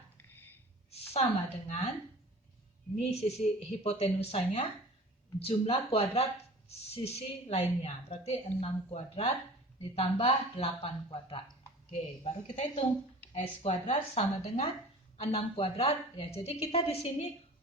sama dengan ini sisi hipotenusanya jumlah kuadrat sisi lainnya. Berarti 6 kuadrat ditambah 8 kuadrat. Oke, baru kita hitung. S kuadrat sama dengan 6 kuadrat. Ya, jadi kita di sini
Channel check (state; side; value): normal; both; correlation 0.42